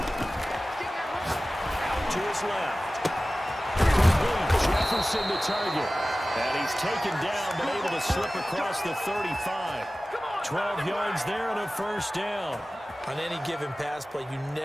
Out to his left. Jefferson the target. And he's taken down, but able to slip across the 35. 12 yards there and a first down. On any given pass play, you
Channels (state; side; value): normal; both; correlation 0.97